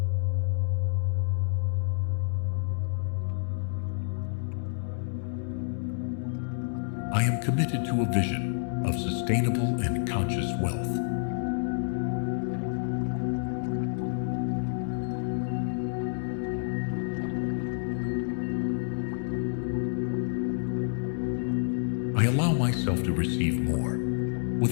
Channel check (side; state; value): right; silent; digital silence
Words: I am committed to a vision of sustainable and conscious wealth. I allow myself to receive more